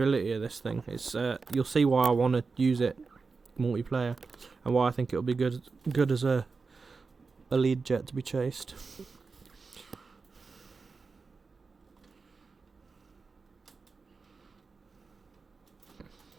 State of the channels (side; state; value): left; quieter; 4.5 dB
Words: of this thing. It's you'll see why I want to use it multiplayer, and why I think it'll be good as a lead jet to be chased.